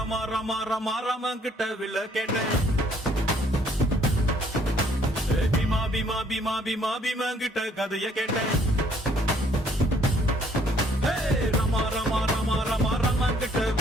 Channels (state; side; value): normal; both; correlation 0.64